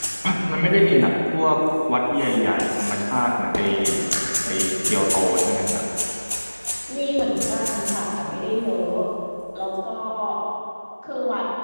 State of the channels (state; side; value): inverted; both; correlation -1.00